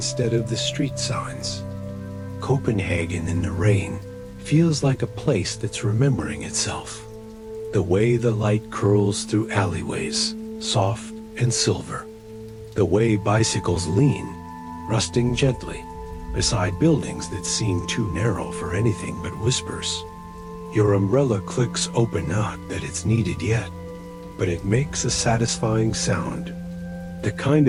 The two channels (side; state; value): both; identical; correlation 1.00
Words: of the street signs. Copenhagen in the rain feels like a place that's remembering itself. The way the light curls through alleyways, soft and silver. The way bicycles lean, rusting gently, beside buildings that seem too narrow for anything but whispers. Your umbrella clicks open, not that it's needed yet, but it makes a satisfying sound. The kind